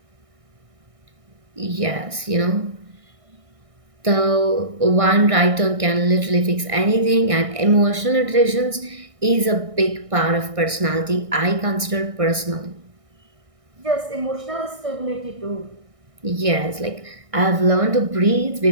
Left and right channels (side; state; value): left; late; 1.6 ms